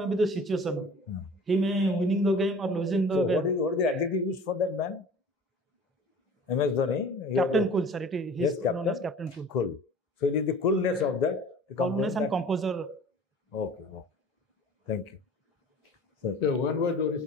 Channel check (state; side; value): normal; both; correlation 0.44